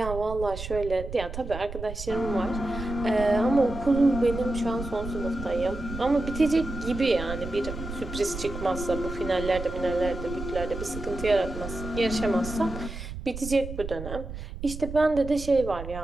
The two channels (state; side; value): noise; right; rumble, 9 dB below the sound